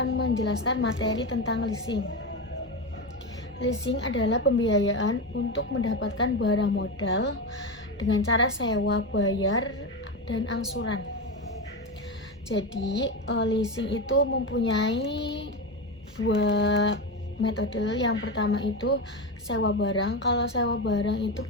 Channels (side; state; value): both; normal; correlation 0.16